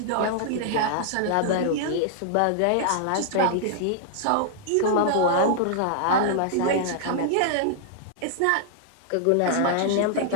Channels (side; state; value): both; different; correlation -0.01